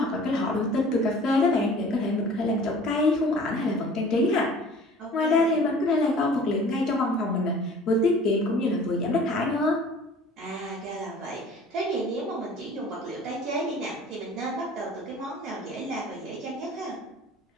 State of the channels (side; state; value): both; normal; correlation 0.47